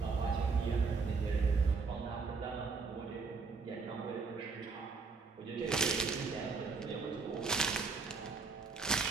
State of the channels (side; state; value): left; quieter; 4.6 dB